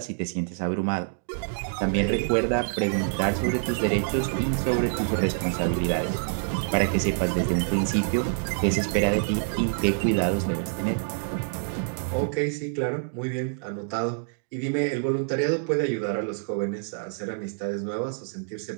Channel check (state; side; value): silent; left; digital silence